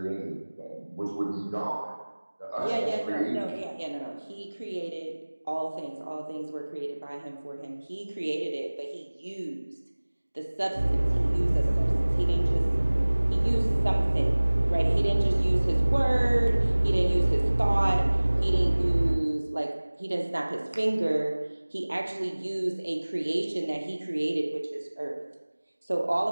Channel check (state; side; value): inverted; both; correlation -1.00